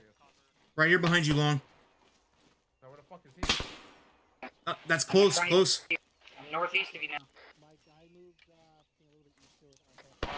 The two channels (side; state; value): both; identical; correlation 1.00